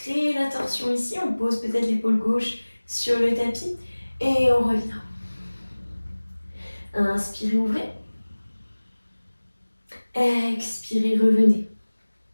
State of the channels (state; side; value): inverted; both; correlation -1.00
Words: la torsion ici, on pose peut-être l'épaule gauche sur le tapis et on revient. Inspirez, ouvrez. Expirez, revenez.